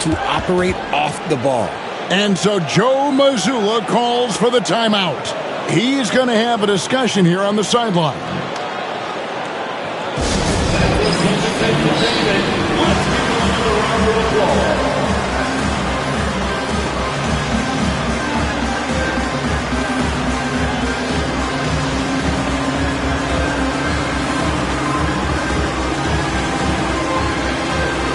operate off the ball. And so Joe Mazzulla calls for the timeout. He's going to have a discussion here on the sideline.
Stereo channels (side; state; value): both; identical; correlation 1.00